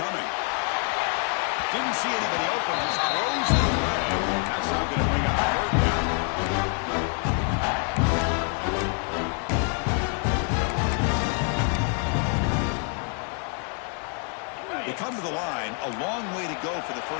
Didn't see anybody open. Just throws it away. That's now going to bring up 3rd down. They come to the line. A long way to go for the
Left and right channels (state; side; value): quieter; right; 39.0 dB